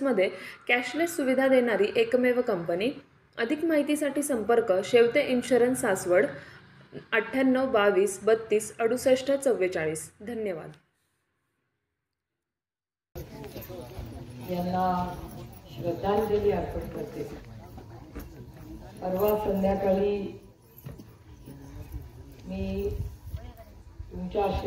कॅशलेस सुविधा देणारी एकमेव कंपनी. अधिक माहितीसाठी संपर्क शेवते इन्शुरन्स, सासवड, 98 22 32 68 44. धन्यवाद. यांना श्रद्धांजली अर्पण करते. परवा संध्याकाळी मी तुमच्या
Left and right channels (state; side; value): identical; both; correlation 1.00